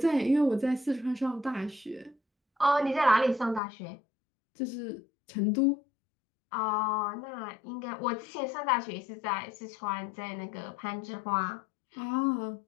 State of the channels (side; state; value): right; drops out; at 3.6 s